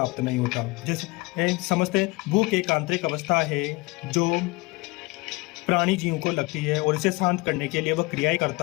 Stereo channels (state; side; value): quieter; right; 24.3 dB